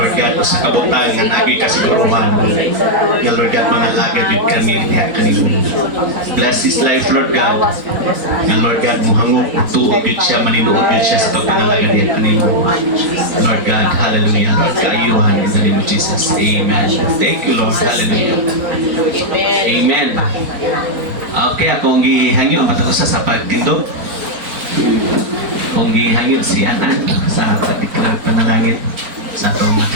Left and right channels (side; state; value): left; late; 4.1 ms